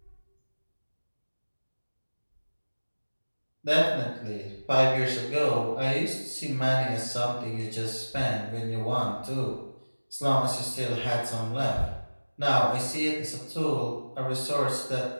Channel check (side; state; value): both; inverted; correlation -1.00